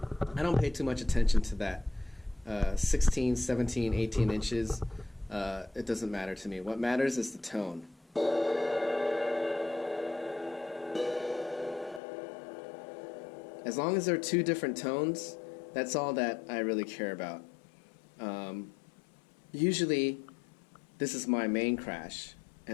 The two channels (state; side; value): drops out; right; at 12.0 s